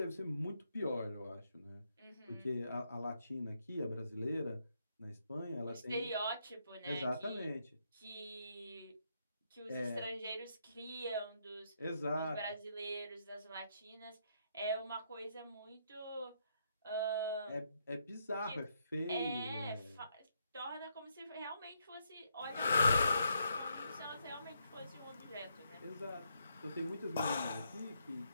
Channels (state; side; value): inverted; both; correlation -0.77